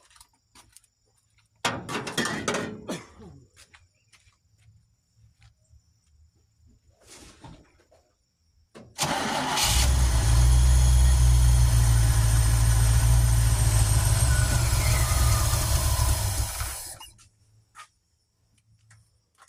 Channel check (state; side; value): identical; both; correlation 1.00